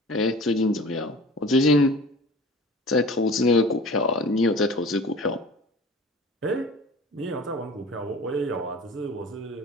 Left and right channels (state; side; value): normal; both; correlation 0.41